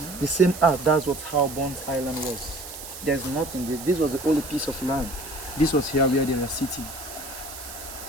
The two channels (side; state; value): right; noise; hiss, 12 dB below the sound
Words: The same that's how Bunce Island was. There's nothing there. This was the only piece of land. This was here where they were sitting.